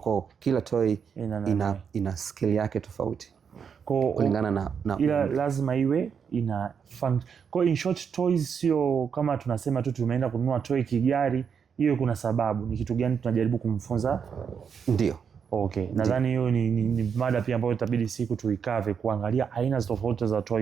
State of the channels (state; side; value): quieter; left; 6.8 dB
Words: kila toy ina skill yake tofauti kulingana na ila lazima iwe ina fun. Kwa in short, toys sio kama tunasema tu tumeenda kununua toy kigari. Hiyo kuna sababu, ni kitu gani tunajaribu kumfunza? Ndio. Nadhani hiyo ni mada pia ambayo itabidi siku tuikave, kuangalia aina tofauti za